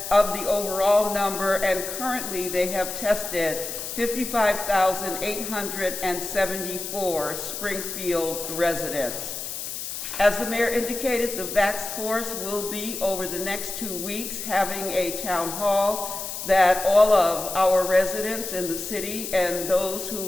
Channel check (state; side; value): noise; left; hiss, 6 dB below the sound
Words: of the overall number, and currently they have tested 55,874 Springfield residents. As the mayor indicated, the Vax Force will be, over the next 2 weeks, having a town hall that all of our residents in the city and those who